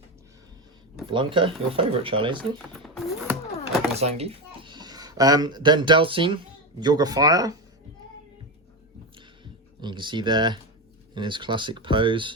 Blanca, your favourite, Charlie, isn't it? Yeah. Zangief. Then Delcine, Yoga Fire. And you can see there in his classic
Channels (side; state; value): both; normal; correlation 0.16